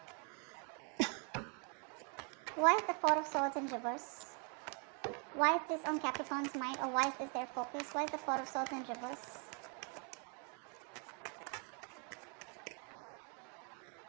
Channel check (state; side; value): quieter; left; 38.5 dB